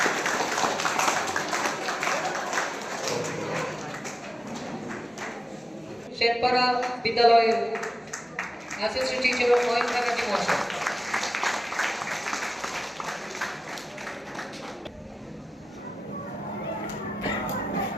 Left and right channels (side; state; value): both; normal; correlation 0.95